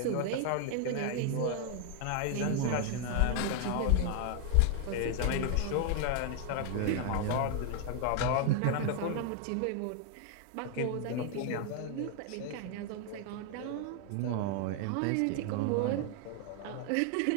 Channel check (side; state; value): both; different; correlation 0.00